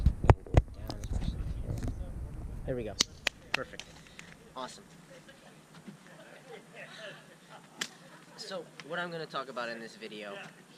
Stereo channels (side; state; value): both; identical; correlation 1.00